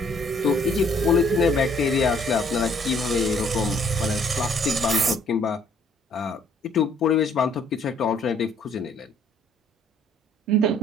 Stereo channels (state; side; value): normal; both; correlation 0.62